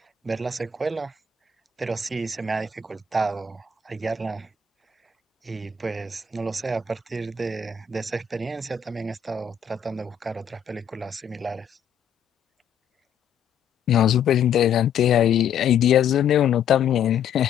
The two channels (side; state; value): right; quieter; 6.8 dB